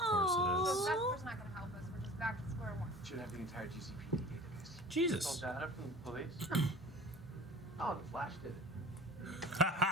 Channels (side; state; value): both; normal; correlation 0.41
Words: So Vesper's not gonna help us. We're just back to square one. Should have the entire GCPD database. it is. Jesus. Call data from the police? Oh, the Flash did it.